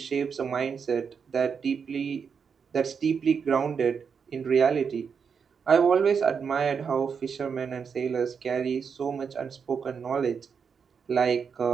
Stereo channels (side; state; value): left; quieter; 6.3 dB